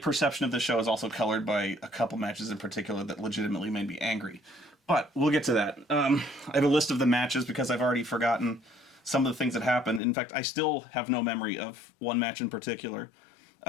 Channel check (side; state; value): right; drops out; at 10.0 s